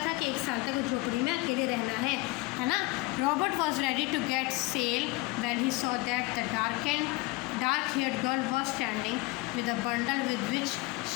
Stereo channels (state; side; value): quieter; right; 22.2 dB